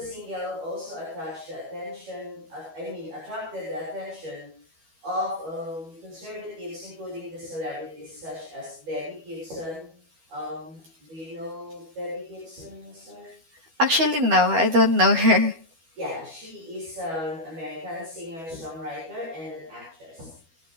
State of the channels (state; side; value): late; left; 12 ms